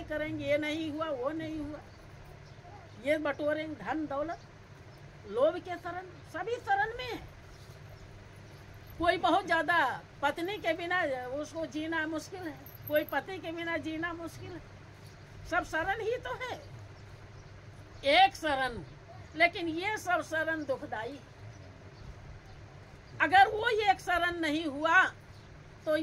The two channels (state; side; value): identical; both; correlation 1.00